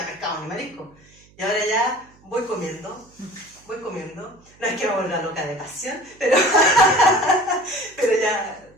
pescado ni marisco. Y ahora ya voy comiendo. No es que me vuelva loca de pasión, pero ya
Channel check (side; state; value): right; noise; hum, 29 dB below the sound